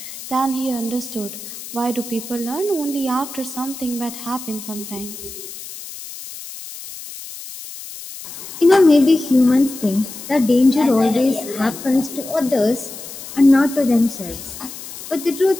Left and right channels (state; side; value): noise; left; hiss, 12 dB below the sound